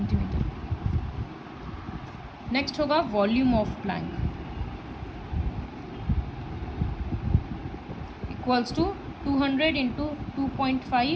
नेक्स्ट होगा volume of plank equals to 200 into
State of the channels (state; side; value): identical; both; correlation 1.00